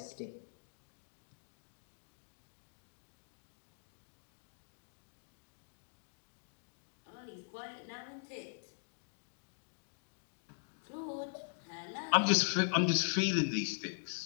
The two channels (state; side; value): silent; right; digital silence